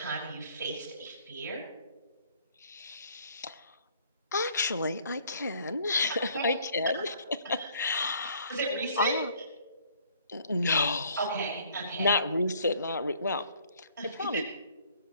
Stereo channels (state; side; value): inverted; both; correlation -0.60